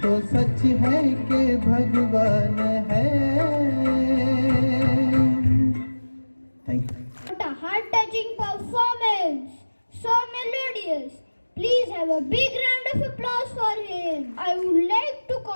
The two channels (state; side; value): inverted; both; correlation -1.00